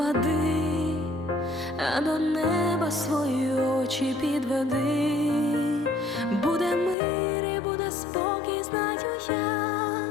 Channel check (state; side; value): drops out; right; at 7.0 s